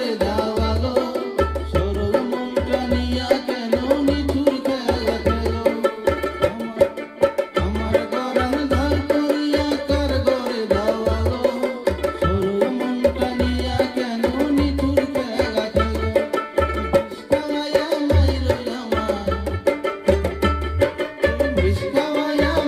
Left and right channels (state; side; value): identical; both; correlation 1.00